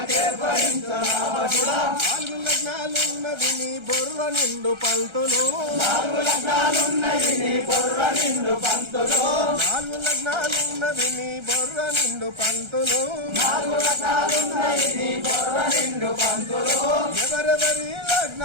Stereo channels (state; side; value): late; left; 1.3 ms